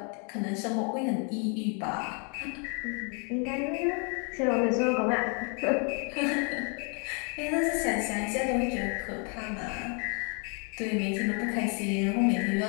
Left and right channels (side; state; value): right; quieter; 37.8 dB